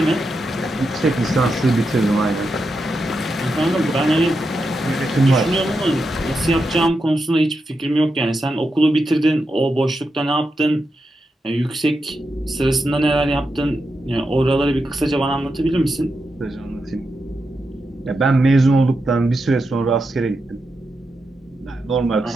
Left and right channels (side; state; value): both; normal; correlation 0.87